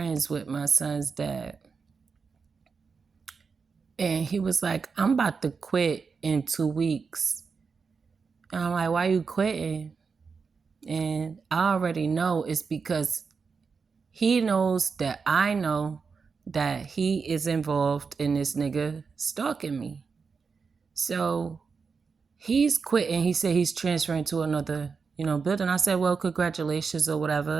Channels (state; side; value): quieter; left; 5.2 dB